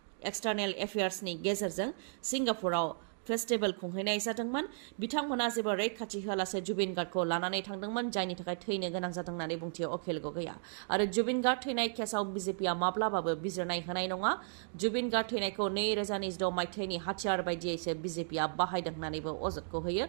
एक्सटार्नेल एफेयार्सनि गेजेरजों सिंगापुराव फेस्टिभेल खुंहैनाय जादोंमोन। बिथांमोना जेबो रैखाथि होआलासे जुबिन गार्गखौ लानानै थांदोंमोन, जायनि थाखाय थैनो गोनां जादों होननानै बुंथियो अखिल गगैया। आरो जुबिन गार्ग थैनाय केसाव बिजेपिआ माब्लाबाबो बिजिरनाय होनाय नङा। जुबिन गार्ग थैनायखौ 2026 मायथाइनि हाथियार बायदियैसो बिजेपिआ बाहायदों होननानैबो अजदखौ होयो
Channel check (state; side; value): silent; left; digital silence